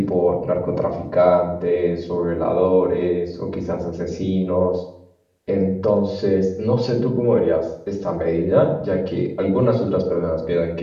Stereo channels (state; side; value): identical; both; correlation 1.00